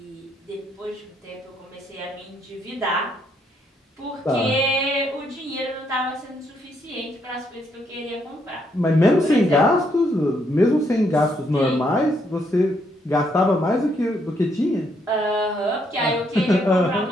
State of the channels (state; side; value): normal; both; correlation 0.73